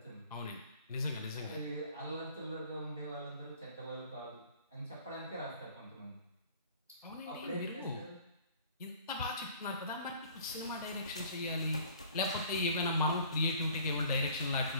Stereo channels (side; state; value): both; inverted; correlation -0.51